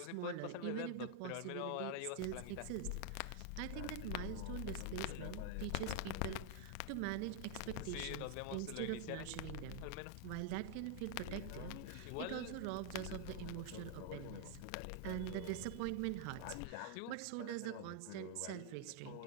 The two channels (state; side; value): different; both; correlation 0.00